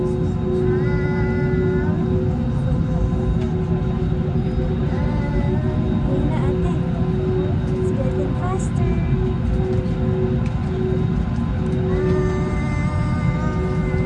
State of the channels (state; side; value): identical; both; correlation 1.00